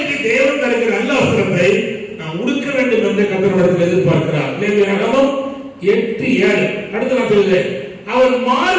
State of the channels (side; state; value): both; identical; correlation 1.00